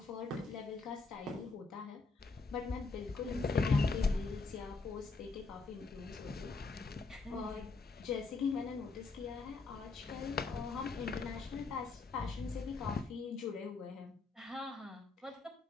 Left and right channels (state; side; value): quieter; right; 4.0 dB